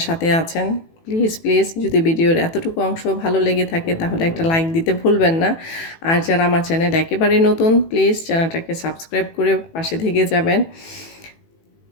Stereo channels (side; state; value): right; late; 18 ms